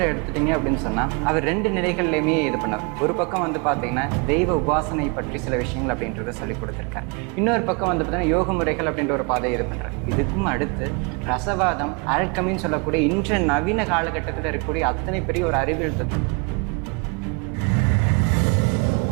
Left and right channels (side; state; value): left; quieter; 32.3 dB